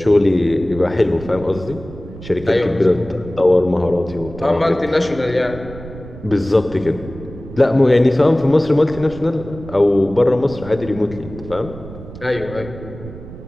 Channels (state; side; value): noise; right; rumble, 15 dB below the sound